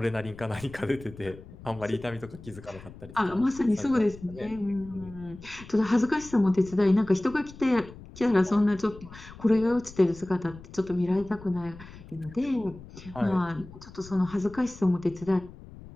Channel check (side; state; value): left; noise; rumble, 17 dB below the sound